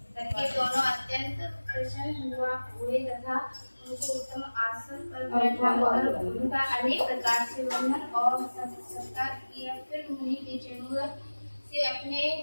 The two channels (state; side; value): inverted; both; correlation -1.00